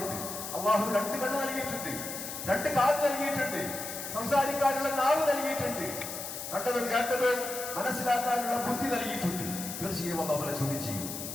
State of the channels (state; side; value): noise; left; hiss, 7 dB below the sound